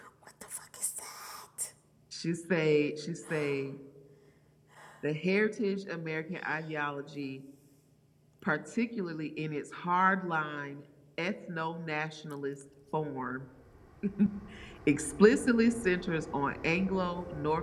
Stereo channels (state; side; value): identical; both; correlation 1.00